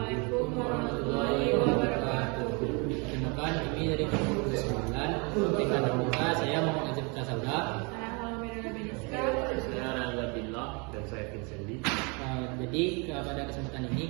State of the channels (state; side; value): quieter; left; 31.2 dB